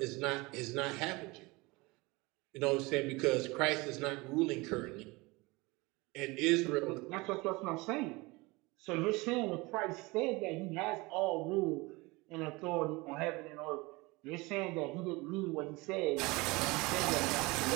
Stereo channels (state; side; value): quieter; left; 23.8 dB